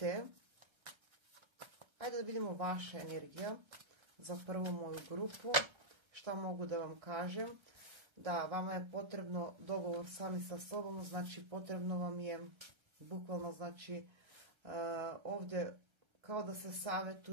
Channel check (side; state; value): left; late; 1.3 ms